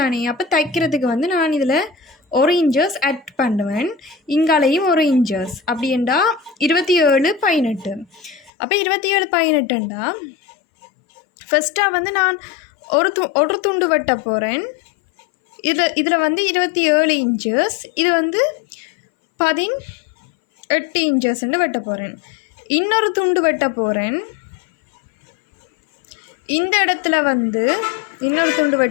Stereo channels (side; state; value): right; drops out; at 8.5 s